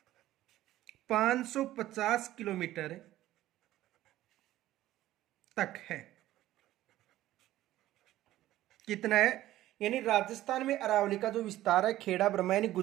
550 किलोमीटर तक है। कितना है? यानी राजस्थान में अरावली का जो विस्तार है खेड़ा ब्रह्मा यानी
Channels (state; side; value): quieter; left; 14.7 dB